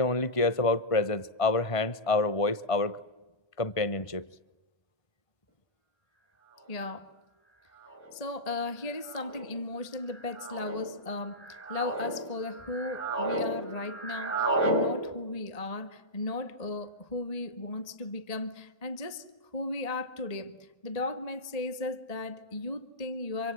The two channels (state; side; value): late; right; 1.8 ms